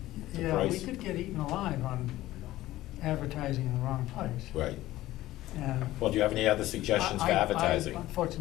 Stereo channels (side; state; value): right; quieter; 15.9 dB